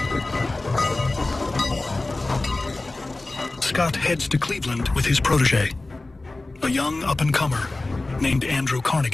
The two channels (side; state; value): right; quieter; 3.0 dB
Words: Scott heads to Cleveland with his protege, a young up-and-comer named Andrew